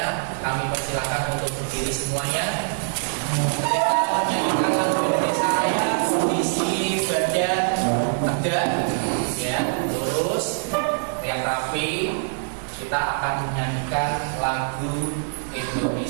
Kami persilakan untuk berdiri semuanya. Kita menyanyikan lagu Indonesia Raya, kondisi badan tegak, ya, lurus, yang rapi. Kita akan menyanyikan lagu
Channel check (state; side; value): silent; left; digital silence